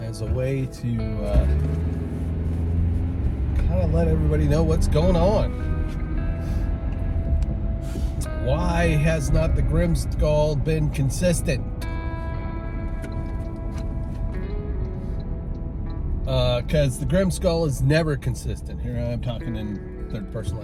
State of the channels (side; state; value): both; identical; correlation 1.00